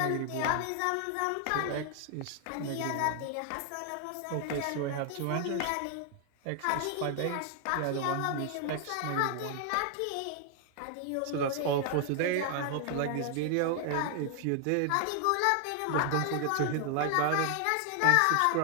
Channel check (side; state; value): both; different; correlation 0.00